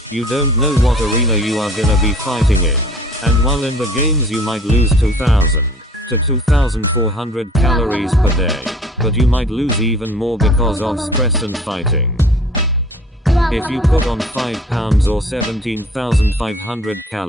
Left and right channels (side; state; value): both; normal; correlation 0.51